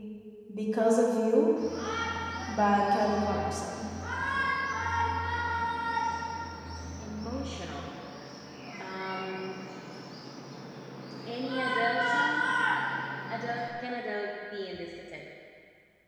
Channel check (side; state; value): both; identical; correlation 1.00